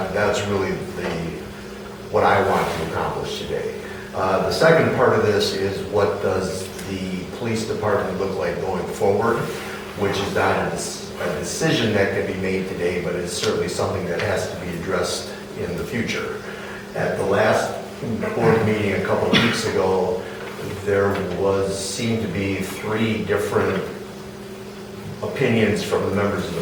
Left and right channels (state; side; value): identical; both; correlation 1.00